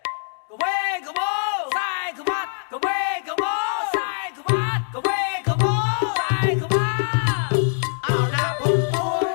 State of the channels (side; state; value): right; silent; digital silence